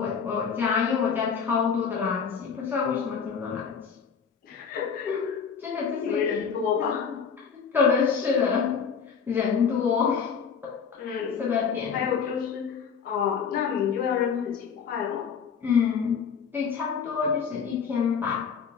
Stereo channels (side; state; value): right; quieter; 6.4 dB